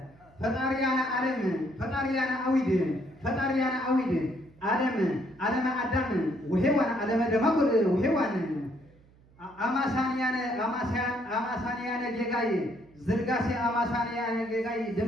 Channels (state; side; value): noise; right; hum, 28 dB below the sound